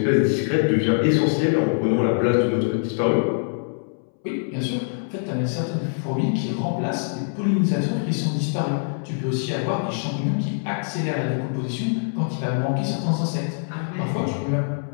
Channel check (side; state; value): right; silent; 63 dB below the other